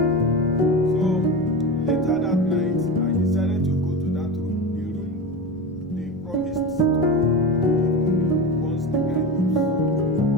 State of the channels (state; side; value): normal; both; correlation 0.25